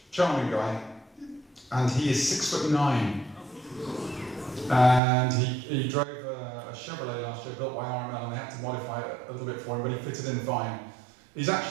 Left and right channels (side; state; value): left; drops out; at 5.0 s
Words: charming guy, and he is 6'9", and he drove a Chevrolet last year built by RML, and they had to modify it a little bit for him, but he fitted in fine. He's